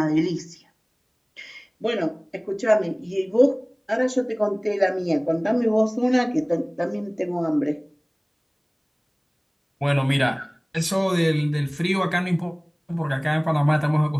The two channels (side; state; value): both; identical; correlation 1.00